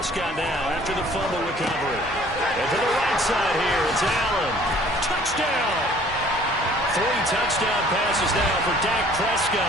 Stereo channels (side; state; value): both; normal; correlation 0.55